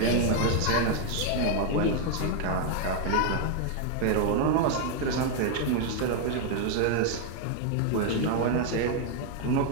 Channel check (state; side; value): different; both; correlation 0.00